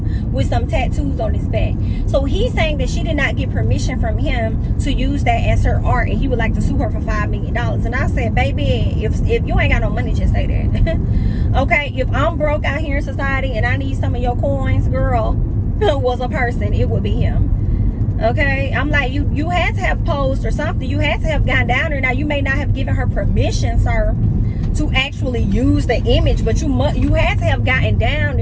with some tattoos on his back. So he's saying that she did not get permission from him to use that as her art, and he would like to sue her for $5 million. And I said, baby, if you ain't got no money, just say that. Okay, if I'm broke out here in society and I need some of your coins, girl, was a person, it would be him. Okay, I'm like, you had to have posed or something. You had to have gone down there. Now, you may not have given her permission, sir, to actually use the image, but you had to have gotten down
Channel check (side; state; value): both; identical; correlation 1.00